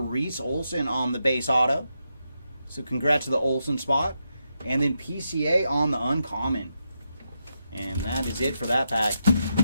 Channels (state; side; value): inverted; both; correlation -0.84